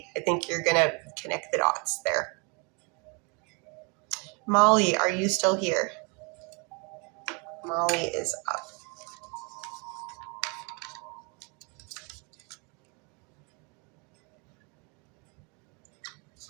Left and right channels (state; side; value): quieter; left; 32.5 dB